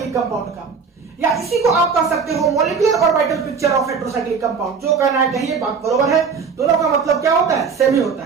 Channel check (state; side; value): quieter; left; 5.7 dB